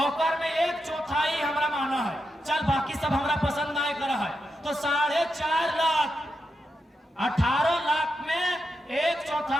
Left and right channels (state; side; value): normal; both; correlation 0.86